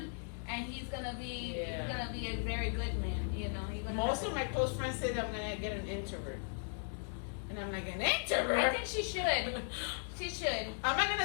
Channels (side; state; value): right; silent; 53 dB below the other